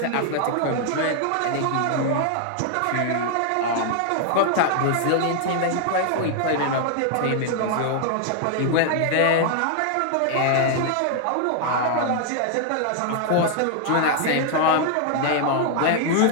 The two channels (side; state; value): both; different; correlation 0.00